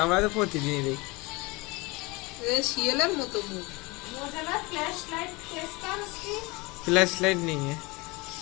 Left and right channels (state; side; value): quieter; right; 25.0 dB